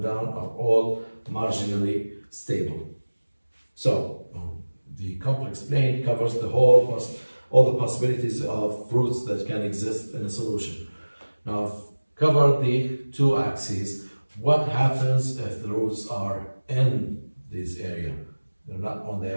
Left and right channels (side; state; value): both; inverted; correlation -1.00